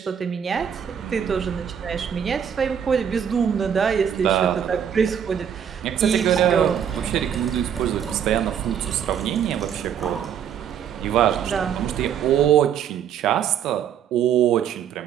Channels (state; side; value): quieter; left; 8.7 dB